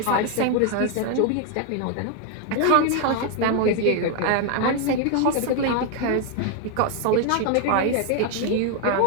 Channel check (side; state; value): both; different; correlation 0.00